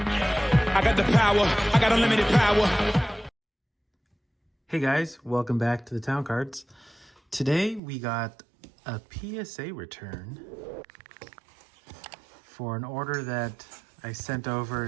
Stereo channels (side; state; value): left; drops out; at 7.8 s